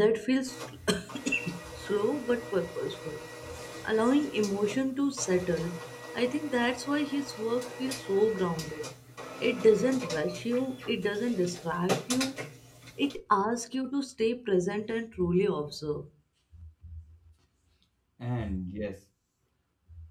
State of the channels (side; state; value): both; identical; correlation 1.00